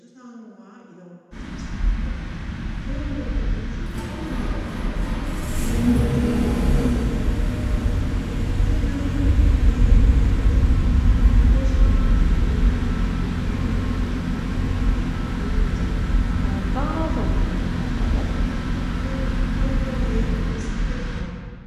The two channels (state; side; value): identical; both; correlation 1.00